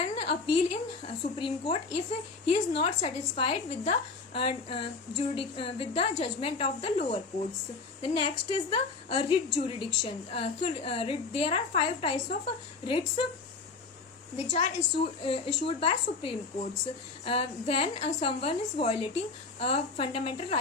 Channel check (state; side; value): quieter; right; 4.3 dB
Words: appeal in Supreme Court if he is not satisfied with the judgment of the lower courts. The next is the writ jurisdiction. There are 5 types of writs which are issued by Supreme Courts. When someone is violating a fundamental